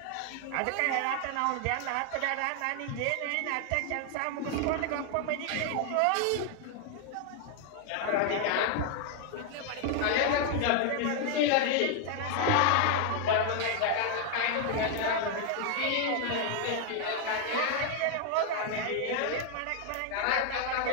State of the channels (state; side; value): different; both; correlation 0.00